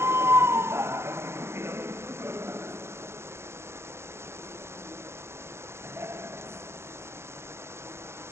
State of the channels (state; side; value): late; left; 0.12 ms